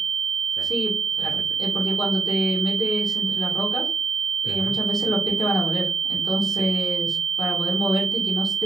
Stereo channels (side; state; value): left; quieter; 3.6 dB